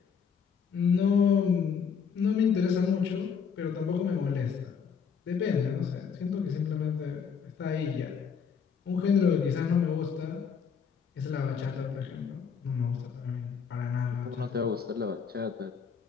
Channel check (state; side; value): quieter; right; 6.5 dB